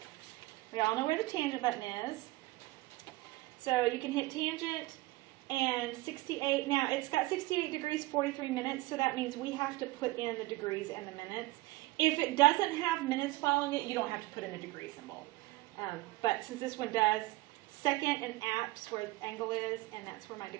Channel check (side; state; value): left; quieter; 20.0 dB